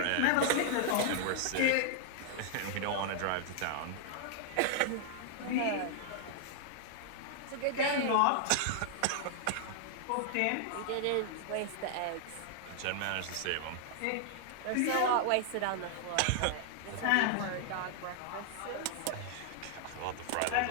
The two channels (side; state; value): both; different; correlation -0.01